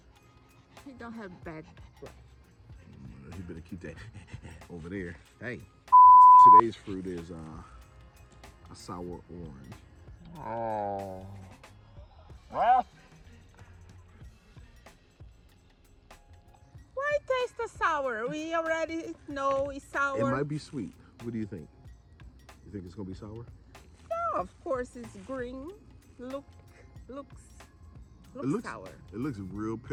He don't have bad breath. You better keep that over there. Hey, today's fruit is a sour orange. Oh. Well. Why taste the sour? We already know it's sour. It might be sweet. What do you think? You think it's gonna be sour? Yeah, of course it's green. Looks sour. It looks real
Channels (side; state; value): both; identical; correlation 1.00